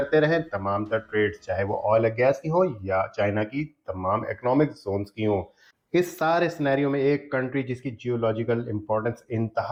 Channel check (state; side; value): identical; both; correlation 1.00